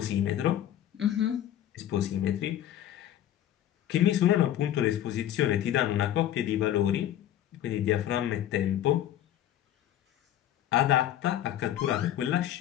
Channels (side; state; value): right; quieter; 11.7 dB